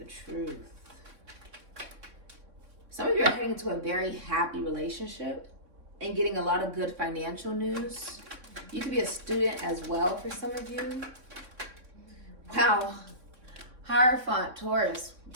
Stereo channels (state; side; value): late; left; 3.6 ms